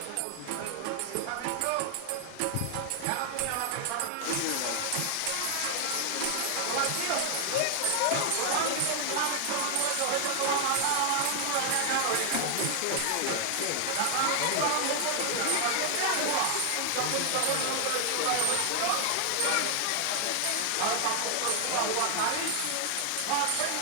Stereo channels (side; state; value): both; different; correlation 0.00